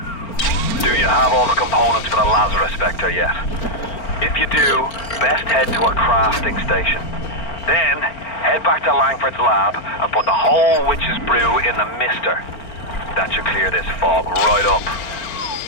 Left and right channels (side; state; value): right; late; 4.4 ms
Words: Do you have all the components for the Lazarus Vector yet? If you do, best head to a crafting station. Then, head back to Langford's lab and put the whole witch's brew in the mister. That should clear this fog right up.